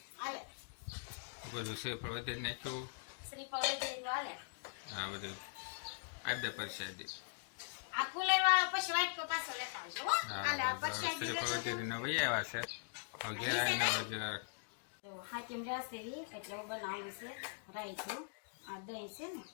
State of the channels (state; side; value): silent; right; digital silence